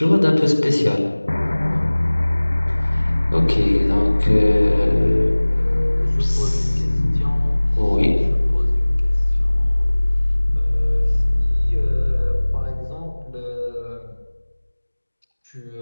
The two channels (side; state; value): both; inverted; correlation -1.00